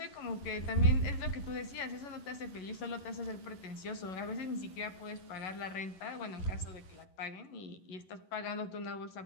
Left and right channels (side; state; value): right; late; 11 ms